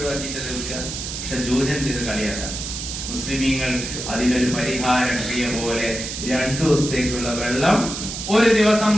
ലഭിക്കുക. പക്ഷെ ജൂതൻ ഇത് കളിയാക്കാം. മുസ്ലിമീങ്ങൾ അതിനൊരു പരിഹാര ക്രിയ പോലെ 2 ദിവസത്തേക്കുള്ള വെള്ളം ഒരു ദിവസം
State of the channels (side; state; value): right; noise; hiss, 6 dB below the sound